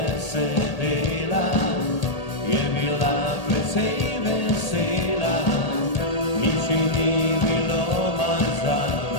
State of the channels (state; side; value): late; right; 1.8 ms